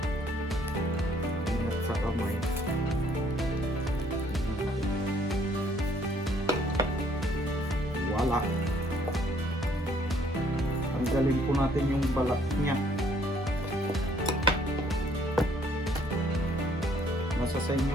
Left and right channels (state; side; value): normal; both; correlation 0.63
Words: Ingat sa kamay. Wala. Tanggalin po natin yung balat niya. Nasa sa